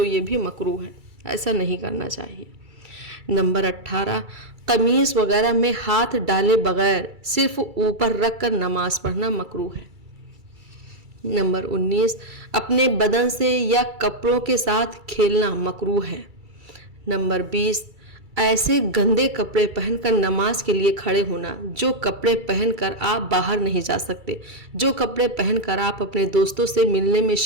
ये भी मकरूह है, ऐसा नहीं करना चाहिए। नंबर 18, कमीज़ वगैरह में हाथ डाले बगैर सिर्फ ऊपर रख कर नमाज पढ़ना मकरूह है। नंबर 19, अपने बदन से या कपड़ों के साथ खेलना मकरूह है। नंबर 20, ऐसे गंदे कपड़े पहनकर नमाज के लिए खड़े होना जो कपड़े पहनकर आप बाहर नहीं जा सकते, जो कपड़े पहनकर आप अपने दोस्तों से मिलने में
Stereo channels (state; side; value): late; left; 2.3 ms